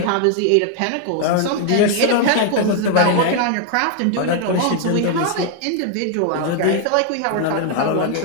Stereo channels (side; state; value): both; different; correlation 0.00